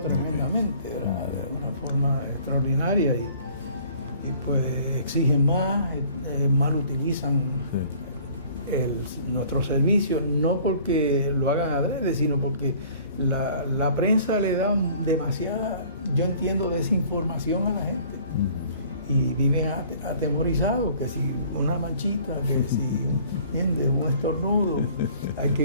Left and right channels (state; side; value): inverted; both; correlation -0.52